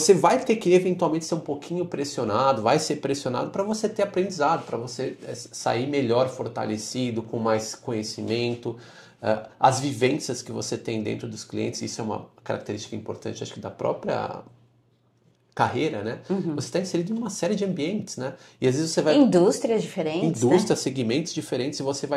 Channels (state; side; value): identical; both; correlation 1.00